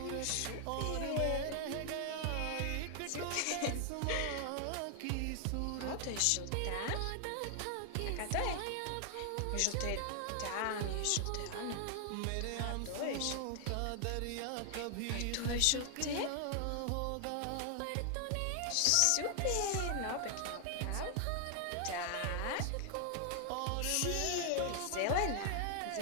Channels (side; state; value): both; different; correlation 0.00